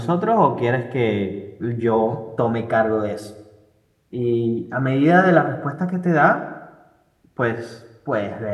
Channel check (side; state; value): both; identical; correlation 1.00